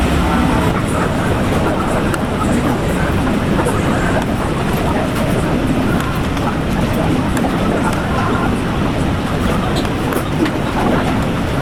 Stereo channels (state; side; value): identical; both; correlation 1.00